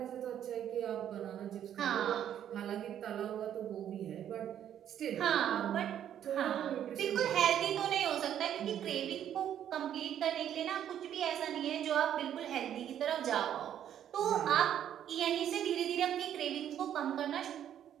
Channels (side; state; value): left; quieter; 10.2 dB